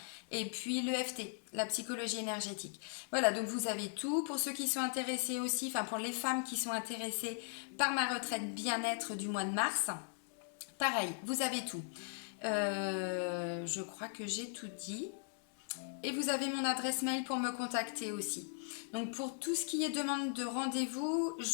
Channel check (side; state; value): right; silent; 52 dB below the other